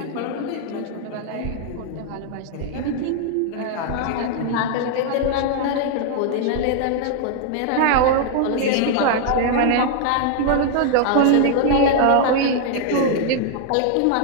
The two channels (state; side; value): different; both; correlation 0.00